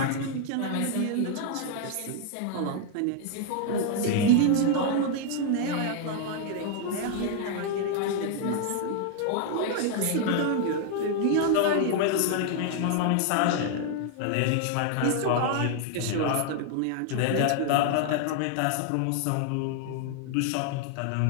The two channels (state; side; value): different; both; correlation 0.00